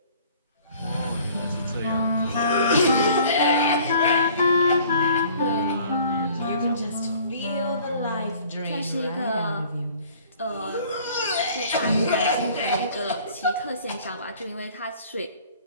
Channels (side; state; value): both; inverted; correlation -0.52